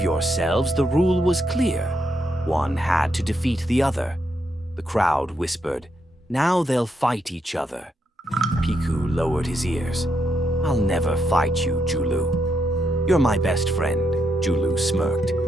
the rule was clear. One had to defeat the other. The crowd whispered, now they'll fight each other. Piku lowered his ears. I'll never fight you, Julu. You're my best friend, Julu smirked.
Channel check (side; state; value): both; normal; correlation 0.80